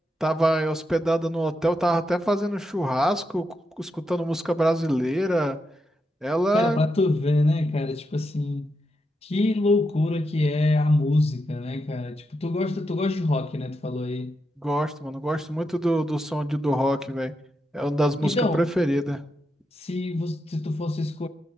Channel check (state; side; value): normal; both; correlation 0.85